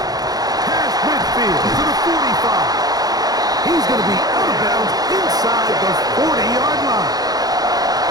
Past midfield to the 45. He's going to be out of bounds inside the 40-yard line.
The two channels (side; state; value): left; late; 0.19 ms